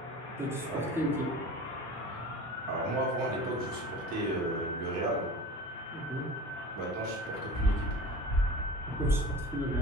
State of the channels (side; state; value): both; normal; correlation 0.37